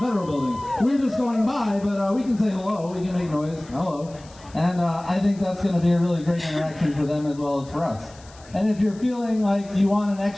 Federal Building. We're just going by, but we can say hello. We can make noise. Hello. And I think that's going to be a really great interaction for them as well as for us. And if you're feeling like you want an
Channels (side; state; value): left; noise; hiss, 24 dB below the sound